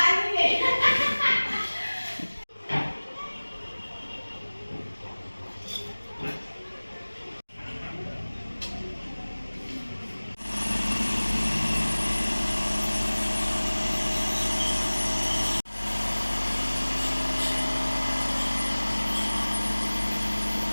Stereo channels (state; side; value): inverted; both; correlation -1.00